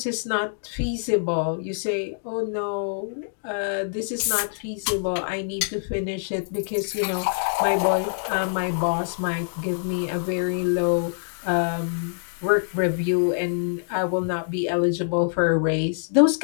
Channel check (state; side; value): silent; right; digital silence